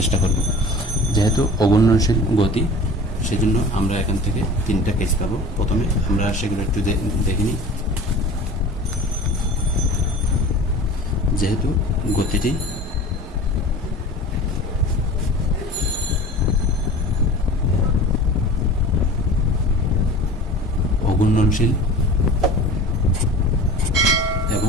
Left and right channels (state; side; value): normal; both; correlation 0.40